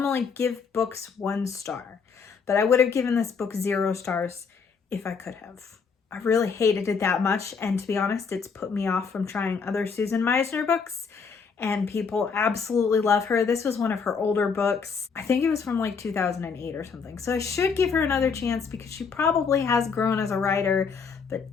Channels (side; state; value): right; quieter; 5.6 dB